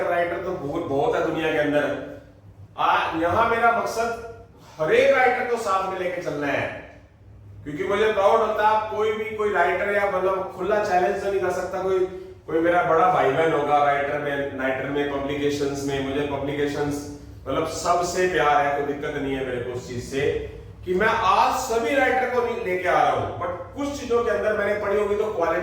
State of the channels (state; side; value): identical; both; correlation 1.00